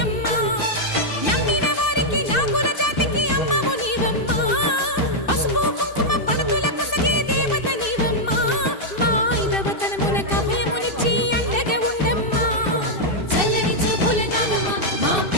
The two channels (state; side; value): late; right; 2.6 ms